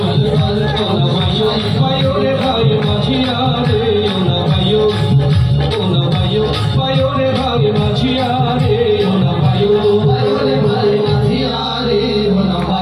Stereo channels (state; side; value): identical; both; correlation 1.00